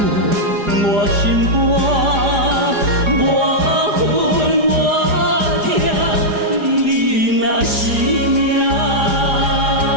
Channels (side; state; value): left; late; 4.9 ms